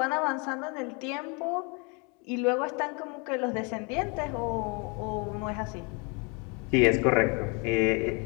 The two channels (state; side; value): quieter; right; 32.1 dB